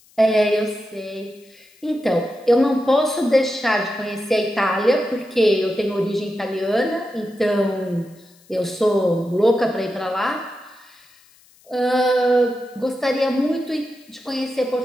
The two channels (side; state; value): left; noise; hiss, 29 dB below the sound